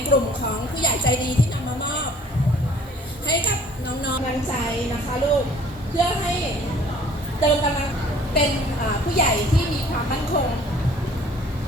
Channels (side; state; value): both; normal; correlation 0.54